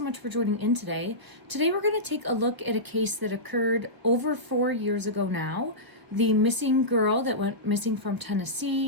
much for joining in today. Today we're going to take a look at a case that occurred over 4 years ago now. The missing girl that went missing from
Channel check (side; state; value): left; late; 1.2 ms